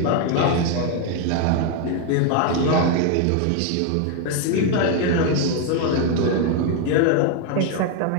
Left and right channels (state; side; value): different; both; correlation 0.01